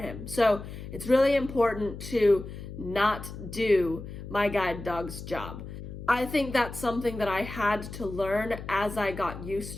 So it's really important to not do my guide dog's job. I think that's something that I had to learn as I got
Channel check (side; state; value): left; noise; hum, 11 dB below the sound